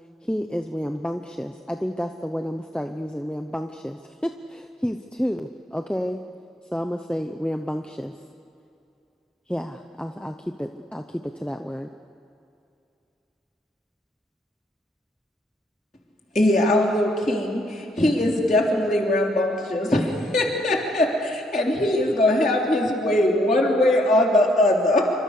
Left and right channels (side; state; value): both; normal; correlation 0.71